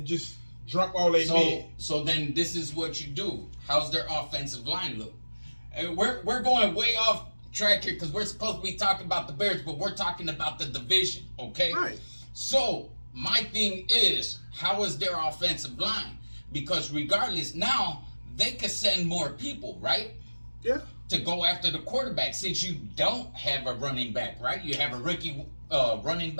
just drop all they men. So then this is what you do. How's their offensive line look? We're going way off track here because we're supposed to be talking about the Bears, but we're talking about the division, okay? Right. So my thing is, how is their offensive line? Because regardless, now they could send more people, right? Yeah. To go after the quarterback, since you don't have a running back, right? You have a rookie running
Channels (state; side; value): inverted; both; correlation -1.00